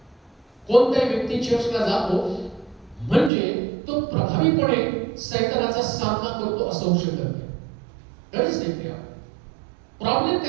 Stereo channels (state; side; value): drops out; left; at 3.3 s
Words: कोणताही व्यक्ती चर्चला जातो म्हणजे तो प्रभावीपणे सैतानाचा सामना करतो असं होऊ शकत नाही. कधीच नाही. प्रॉब्लेम